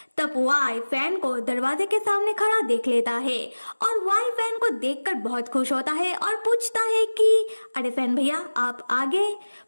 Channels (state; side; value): inverted; both; correlation -1.00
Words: तब वाई फैन को दरवाजे के सामने खड़ा देख लेता है और वाई फैन को देखकर बहुत खुश होता है और पूछता है कि अरे फैन भैया, आप आ गए।